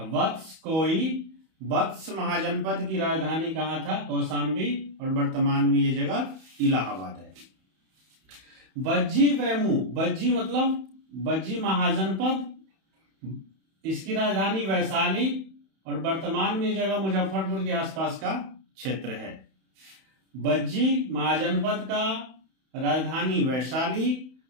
वत्स कोई, वत्स महाजनपद की राजधानी कहां था? कौशाम्बी और वर्तमान में ये जगह इलाहाबाद है। बज्जी वैमू, बज्जी मतलब बज्जी महाजनपद, इसकी राजधानी वैशाली और वर्तमान में ये जगह मुजफ्फरपुर के आसपास का क्षेत्र है। बज्जी महाजनपद का राजधानी वैशाली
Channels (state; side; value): late; left; 31 ms